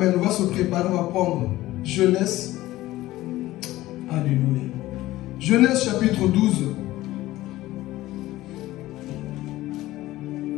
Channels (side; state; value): right; quieter; 16.6 dB